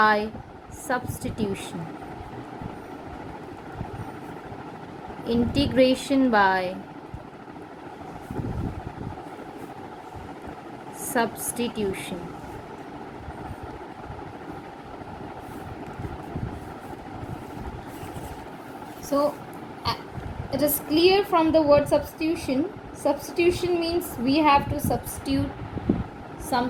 substitution. Integration by substitution. So it is clear from the word substitution. Substitution means we have to substitute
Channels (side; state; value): both; identical; correlation 1.00